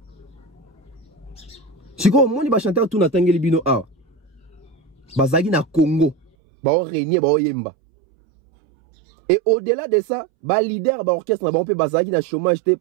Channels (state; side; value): drops out; left; at 6.3 s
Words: Si quoi moi ni ba chanteur tout na tangi libino a. Bazagi na Congo, ba o régner ba o yemba. Et au-delà de ça, ba leader ba orchestre na ba on peut bazagi na chômage te,